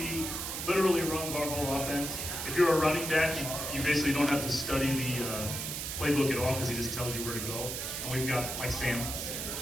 literally runs our whole offense. If you're a running back, you basically don't have to study the playbook at all because he just tells you where to go. And we've got like Sam.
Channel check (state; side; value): noise; right; hiss, 4 dB below the sound